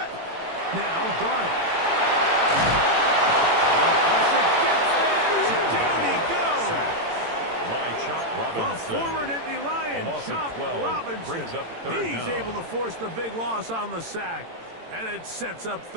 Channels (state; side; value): late; left; 18 ms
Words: Now, Darnold. Pressure gets there. Down he goes. By Chop The Robinson. former Nittany Lion, A loss of Chop 12 Robinson. brings up third He's down. able to force the big loss on the sack, and it sets up